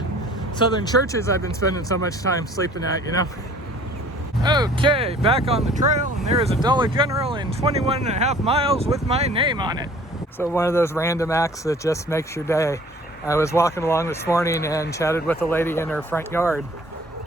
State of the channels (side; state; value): both; normal; correlation 0.51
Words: southern churches I've been spending so much time sleeping at, Okay, back on the trail, and there is a Dollar General in 21.5 miles with my name on it. So one of those random acts that just makes your day. I was walking along this morning and chatted with a lady in her front yard,